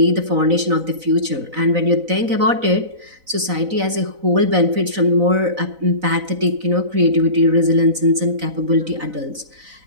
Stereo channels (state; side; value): late; left; 4.0 ms